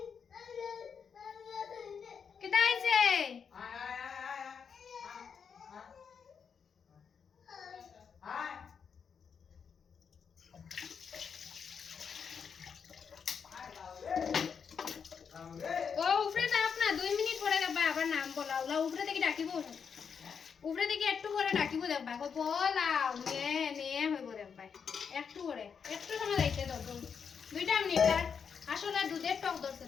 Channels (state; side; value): quieter; right; 6.6 dB